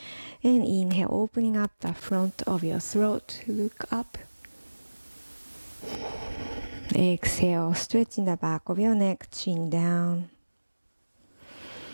And inhale, opening up the front of your throat. Look up. Exhale, stretching the back of your neck, chin down.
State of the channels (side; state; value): both; inverted; correlation -1.00